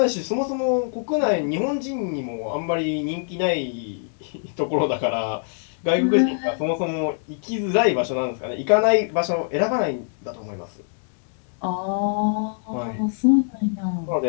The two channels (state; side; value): silent; right; digital silence